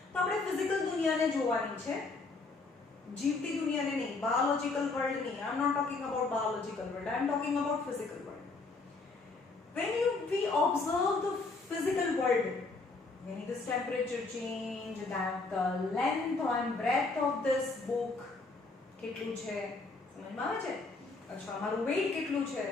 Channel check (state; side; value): quieter; right; 3.7 dB